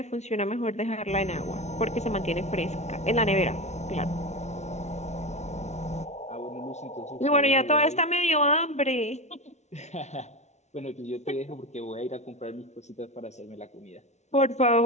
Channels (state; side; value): late; right; 0.32 ms